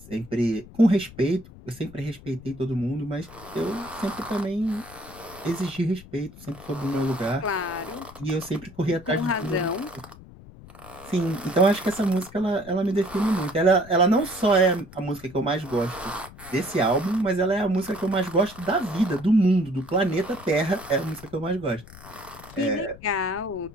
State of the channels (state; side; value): noise; left; rumble, 19 dB below the sound